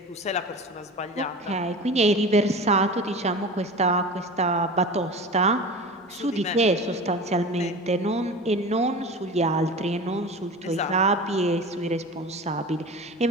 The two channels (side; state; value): both; normal; correlation 0.33